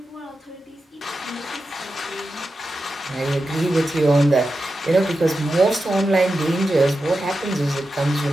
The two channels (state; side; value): normal; both; correlation 0.90